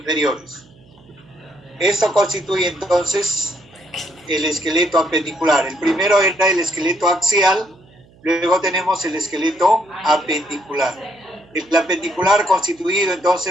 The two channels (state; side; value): noise; right; hum, 28 dB below the sound